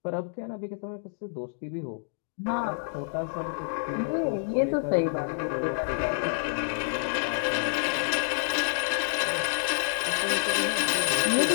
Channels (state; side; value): silent; right; digital silence